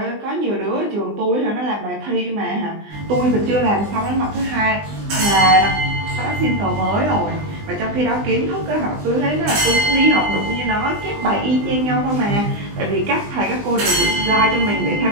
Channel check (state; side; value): late; left; 20 ms